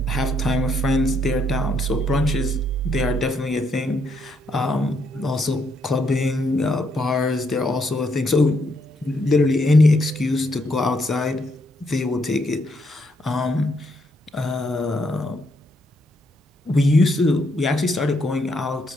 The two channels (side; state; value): both; normal; correlation 0.75